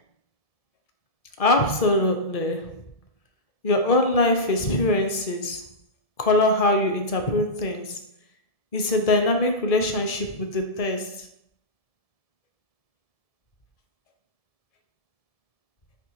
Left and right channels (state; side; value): late; right; 1.7 ms